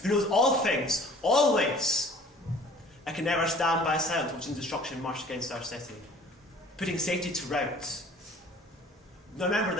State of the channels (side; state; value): both; normal; correlation 0.50